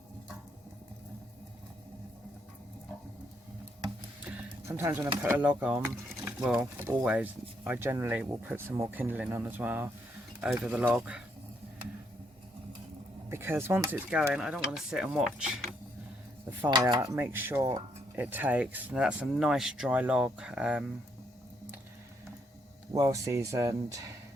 Sometimes when I put a log on, well, always, I generally will put some more kindling on as well over the log, because once it's going, I don't want to sit and watch the fire. Make sure it takes. Now that's a nice dry log, well seasoned,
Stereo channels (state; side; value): normal; both; correlation 0.74